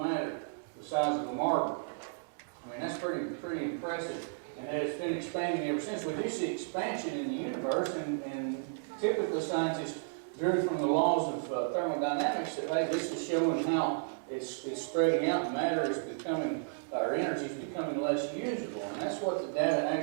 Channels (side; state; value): left; silent; digital silence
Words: the size of a marble? I mean, that's pretty impressive. And it's been expanding ever since. We do see expansion in the universe, and typically scientists drew from the laws of thermodynamics that, hey, this is showing how it's spreading out, and matter is becoming, or energy is becoming less usable. And that's what the data